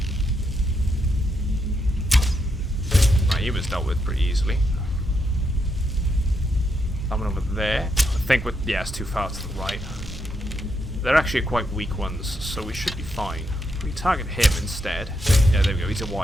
Right, he was dealt with pretty easily. That one over there. I think with, yeah, it's too far to the right. They're actually quite weak ones, so we should be fine. We target him instead. Yeah, there we go. He's a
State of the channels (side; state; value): both; normal; correlation 0.80